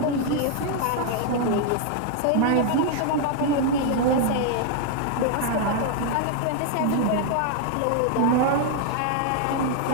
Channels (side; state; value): both; different; correlation 0.00